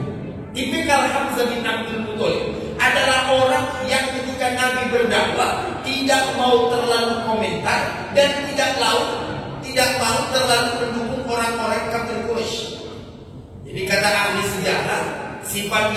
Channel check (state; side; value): identical; both; correlation 1.00